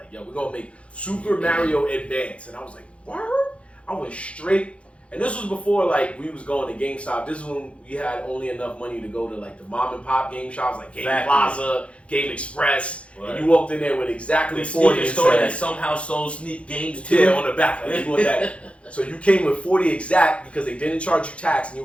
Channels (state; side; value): late; right; 0.061 ms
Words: yo, we're gonna make Super Mario Advance, and I was like, what? I went straight. And this was before like we was going to GameStop. This is when we had only enough money to go to like the mom and pop game shops like Game Plaza, Game Express, and you walked in there with exactly 40 and store that somehow sold sneak games too. Yeah, on the back. Like, you want that. So you came with 40 exact because they didn't charge you tax, and you